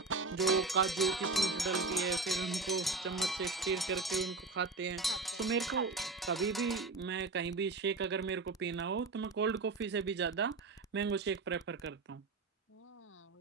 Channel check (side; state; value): left; quieter; 3.8 dB